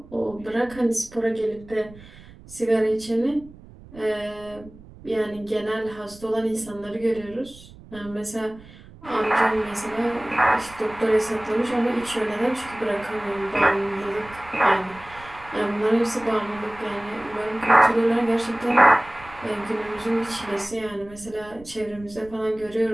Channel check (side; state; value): right; noise; rumble, 20 dB below the sound